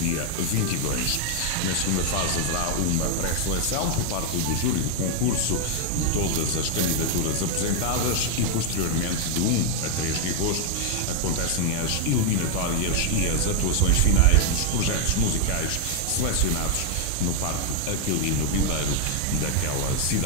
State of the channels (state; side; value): different; both; correlation 0.00